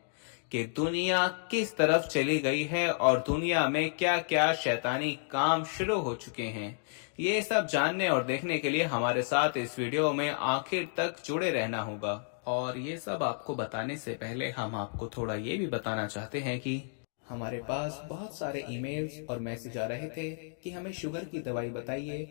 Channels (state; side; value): silent; right; digital silence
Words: कि दुनिया किस तरफ चली गई है और दुनिया में क्या क्या शैतानी काम शुरू हो चुके हैं। ये सब जानने और देखने के लिए हमारे साथ इस वीडियो में आखिर तक जुड़े रहना होगा। और ये सब आपको बताने से पहले हम आपको थोड़ा ये भी बताना चाहते हैं कि हमारे पास बहुत सारे ईमेल्स और मैसेज आ रहे थे कि हमें शुगर की दवाई बताइए।